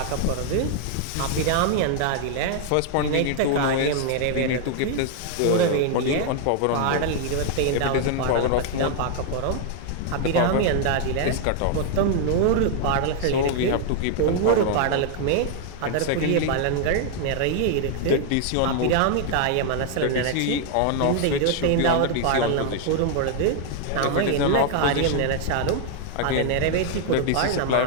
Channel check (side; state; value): both; different; correlation 0.00